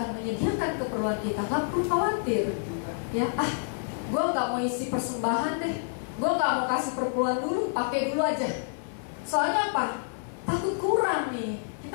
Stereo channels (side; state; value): right; silent; 57 dB below the other